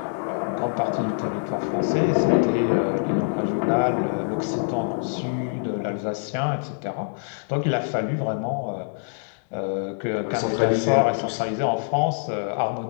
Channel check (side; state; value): right; silent; digital silence